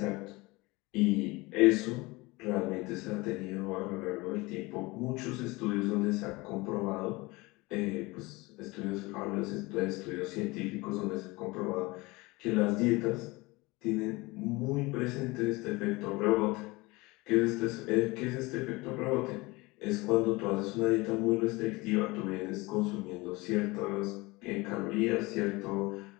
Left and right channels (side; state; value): right; quieter; 23.0 dB